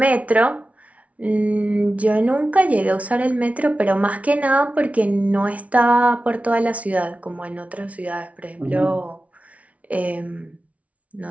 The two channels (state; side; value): late; left; 0.067 ms